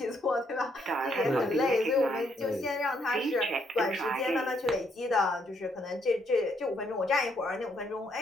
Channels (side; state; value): both; normal; correlation 0.72